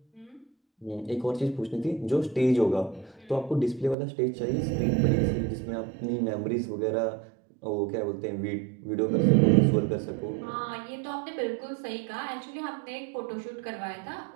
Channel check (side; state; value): left; drops out; at 4.0 s